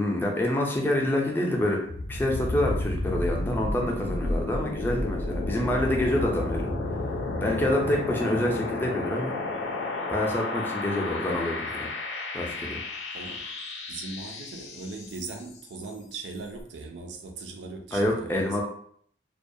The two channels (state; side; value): normal; both; correlation 0.67